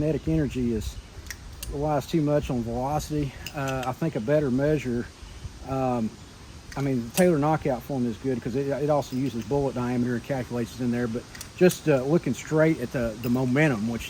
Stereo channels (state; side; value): identical; both; correlation 1.00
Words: energy relies too much on velocity. I think a better measure, I mean, the Taylor knockout formula is good because it also uses bullet diameter and calculates it in there, but just looking straight at the momentum, which